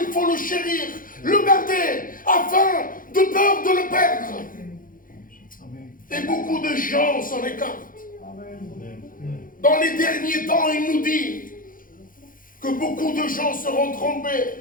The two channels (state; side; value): late; right; 0.40 ms